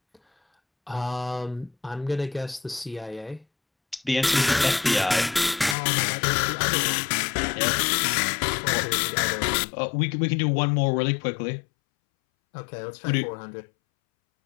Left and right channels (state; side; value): drops out; right; at 5.8 s